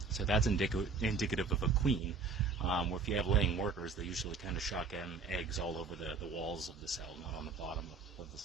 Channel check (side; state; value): left; quieter; 4.6 dB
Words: So that's indicative of a queen. Where if you have laying workers, they usually kind of shotgun eggs all over the walls of the cell, not on the bottom of the